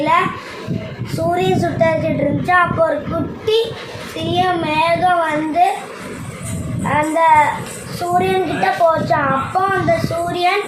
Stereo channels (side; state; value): both; identical; correlation 1.00